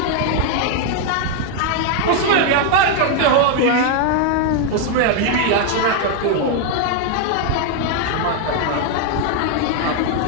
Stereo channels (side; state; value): both; different; correlation 0.01